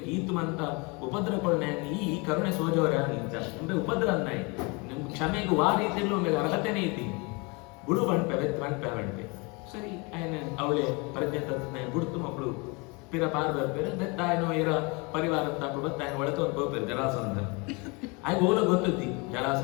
ಈತು ಮಂತ ಉಪದ್ರವಗಳನ್ನ ಈ ಕರುಣೆ ಸೋಜವರ ಇಂಚ ಅಂದ್ರೆ ಉಪದ್ರ ಅನ್ನಾಯಿ ನಿಮ್ ಕ್ಷಮೆಗೆ ವಾ ರೀತಿಯಲ್ಲೂ ಒಮ್ಮೆ ಅರ್ಹತೆನೇ ಇದ್ದೀನಿ ಬುಡು ಬಂಡ್ಪೆ ಸರಿ ಆಯ್ನ ಅವಳೆ ಪ್ರಜ್ಞೆ ತತ್ನ ಬುಡ್ತು ಮಕ್ಕಳು ಪಿರ ಪಾರ್ ಬರ್ಪೇರು ಬೆತ್ತಾಯನೋ ಇರ ಪರಿವಾರ ತಪ್ಪು ಬತ್ತಾಯನ ಒಳತು ಒಂದು ಹೋಗ್ಪೇರು ಜರಾಸಂಧ ಆಗ ಓಲ ಗೊತ್ತುದ್ದಿ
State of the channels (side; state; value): right; quieter; 29.1 dB